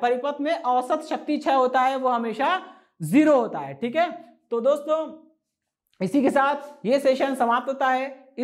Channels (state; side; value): identical; both; correlation 1.00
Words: परिपथ में, औसत शक्ति क्षय होता है वो हमेशा 0 होता है। ठीक है, तो दोस्तों इसी के साथ ये सेशन समाप्त होता है।